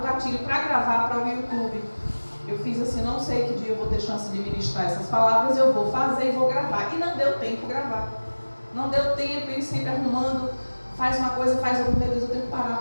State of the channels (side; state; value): both; inverted; correlation -1.00